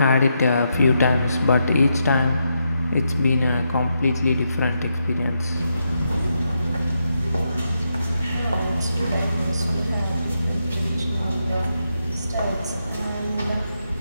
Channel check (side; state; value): both; inverted; correlation -0.83